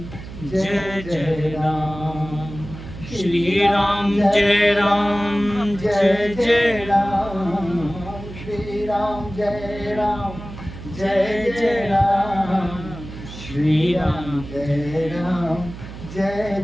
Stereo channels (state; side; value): noise; right; hum, 12 dB below the sound